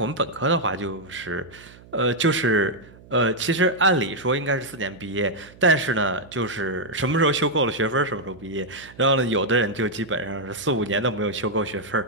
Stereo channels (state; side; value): noise; right; hum, 22 dB below the sound